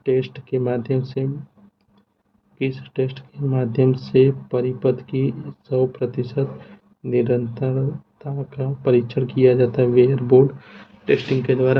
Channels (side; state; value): both; identical; correlation 1.00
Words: टेस्ट के माध्यम से किस टेस्ट के माध्यम से परिपथ की 100% निरंतरता का परीक्षण किया जाता है? वेयर बोर्ड टेस्टिंग के